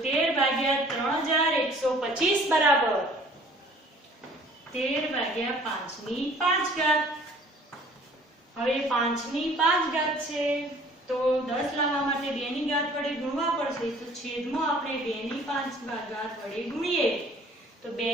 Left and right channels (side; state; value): both; normal; correlation 0.53